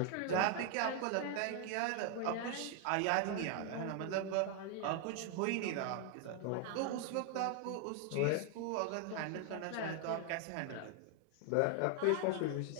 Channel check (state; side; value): different; both; correlation 0.00